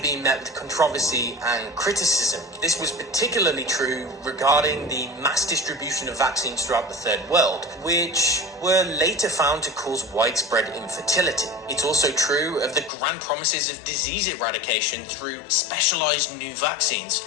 met with controversy and criticism. This was particularly true regarding the mass distribution of vaccines throughout the Third World, which were later found to cause widespread infertility. It's also true of the grand promises of disease eradication through specialized new vaccines,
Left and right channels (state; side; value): drops out; right; at 12.9 s